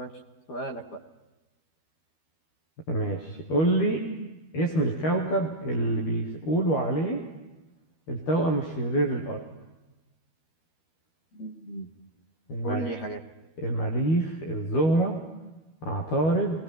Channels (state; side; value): late; right; 12 ms